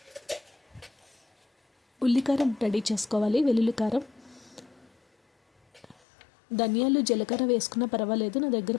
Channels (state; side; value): drops out; right; at 6.0 s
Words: ఉల్లికారం రెడీ చేసుకోవాలి. వెల్లుల్లి కారం, ధనియాలు జీలకర్ర వేసుకున్నా పర్వాలేదు. నా